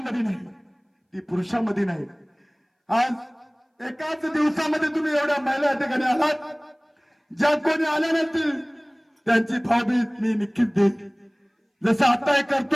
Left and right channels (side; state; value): both; identical; correlation 1.00